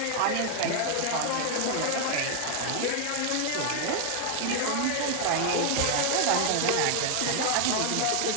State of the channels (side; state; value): both; different; correlation 0.00